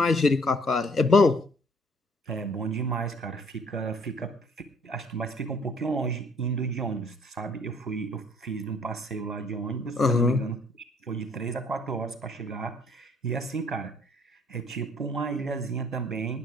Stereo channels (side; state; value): both; normal; correlation 0.60